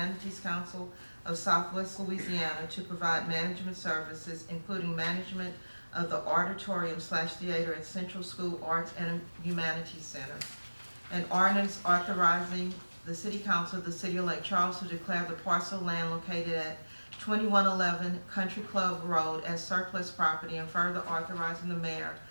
Council of Southwest Louisiana to provide management services, including management of the auditorium/theater at Central School Arts and Humanities Center. An ordinance authorizing the City Council of the City of Lake Charles to declare the parcel of land located at 2111 Country Club Road as surplus property, and further authorizing the mayor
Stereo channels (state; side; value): inverted; both; correlation -1.00